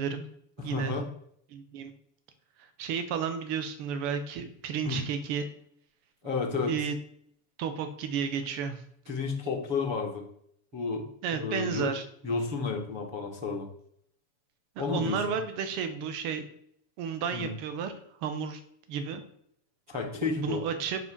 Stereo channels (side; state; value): left; late; 7.0 ms